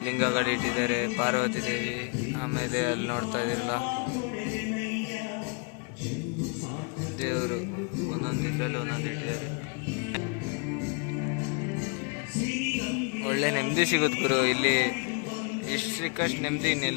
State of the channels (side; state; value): right; quieter; 37.2 dB